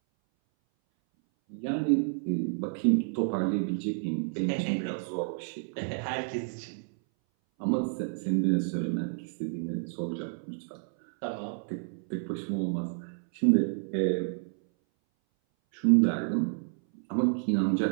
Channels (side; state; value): left; silent; 58 dB below the other